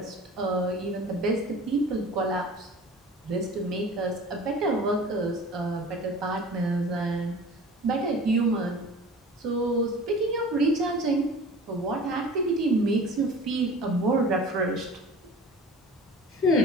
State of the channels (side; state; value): both; normal; correlation 0.41